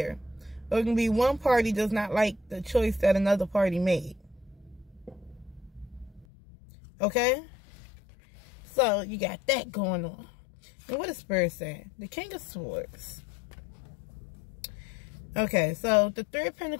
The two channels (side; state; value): right; drops out; at 6.2 s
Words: Or it can be one party does not like the choice that another party made. Okay? So, you got that going on. And what is Spirit saying? The King of Swords. Okay, so the Three of